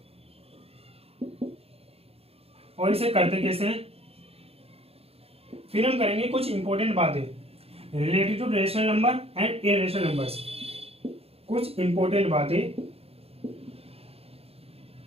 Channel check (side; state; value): left; late; 0.29 ms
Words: और इसे करते कैसे हैं। फिर हम करेंगे कुछ इंपॉर्टेंट बातें related to rational number and irrational numbers. कुछ इंपॉर्टेंट बातें